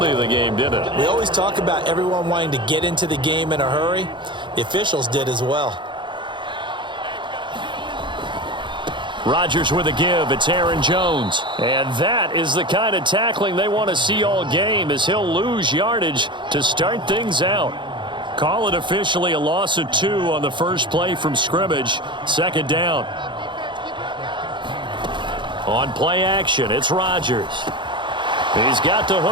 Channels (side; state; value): left; late; 0.23 ms